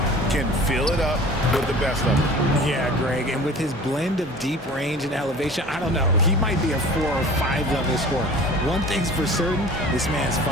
can fill it up with the best of it. Yeah, Greg, and with his blend of deep range and elevation, I don't know. He might be a 4 or 5 level scorer. One thing's for certain, this man's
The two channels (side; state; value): both; normal; correlation 0.43